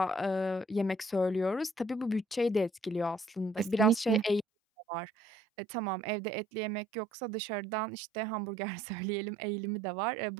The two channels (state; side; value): drops out; left; at 4.5 s